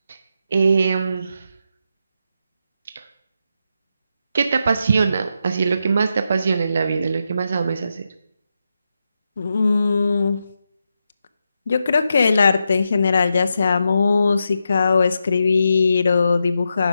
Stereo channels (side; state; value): both; inverted; correlation -0.85